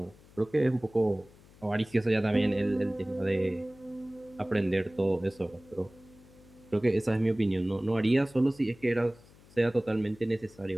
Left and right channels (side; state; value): left; noise; hum, 25 dB below the sound